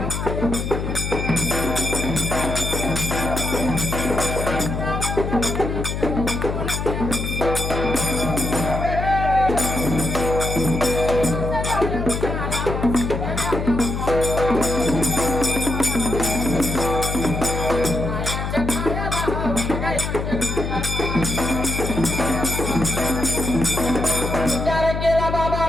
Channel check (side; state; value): left; noise; hum, 3 dB below the sound